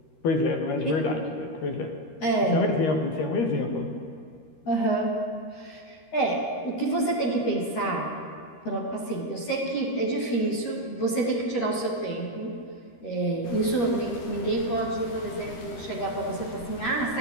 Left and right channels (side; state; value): right; late; 13 ms